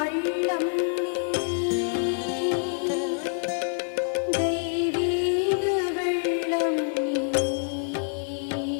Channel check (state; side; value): silent; right; 61 dB below the other